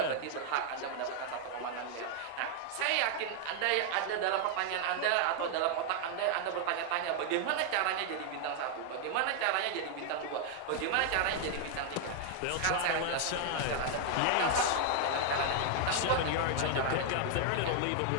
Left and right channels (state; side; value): different; both; correlation 0.00